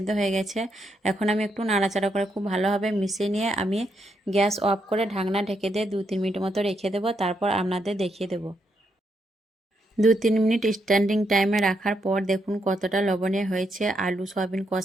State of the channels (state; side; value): normal; both; correlation 0.79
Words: হয়ে গেছে। এখন আমি একটু নাড়াচাড়া করে খুব ভালোভাবে মিশিয়ে নিয়ে আমি গ্যাস অফ করে ঢাকনা ঢেকে দিয়ে 2-3 মিনিট মতো রেখে দেবো। তারপর আপনাদের দেখিয়ে দেবো। 2-3 মিনিট স্ট্যান্ডিং টাইমে রাখার পর দেখুন কতটা লবণীয় হয়েছে আলু সয়াবিন